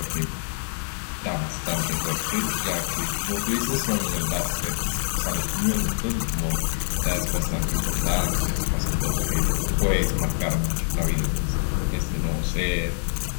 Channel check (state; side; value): silent; right; digital silence